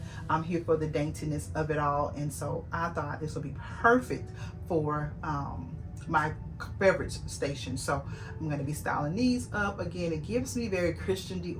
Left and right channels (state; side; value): identical; both; correlation 1.00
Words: I'm here for the daintiness of it all, and so I thought this would be perfect for my beverage station. So I'm going to be styling these up. Again, it gives me very Christian